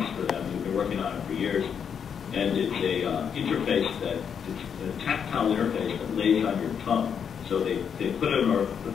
for them. We've been working on it for years. And it's a interface it's a tactile interface that lays on your tongue. So they put an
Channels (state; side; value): quieter; right; 7.4 dB